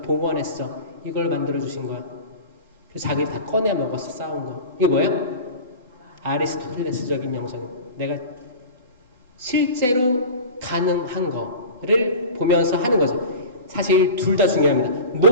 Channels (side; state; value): both; inverted; correlation -0.34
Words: 봉헌했어. 이걸 만들어주신 거야. 그래서 자기 다 꺼내 먹었어. 싸운 거. 이게 뭐예요? 아리스토텔레스적인 영성. 내가 실제로 가능한 거를 보면서 하는 거죠. 사실 둘 다 중요합니다.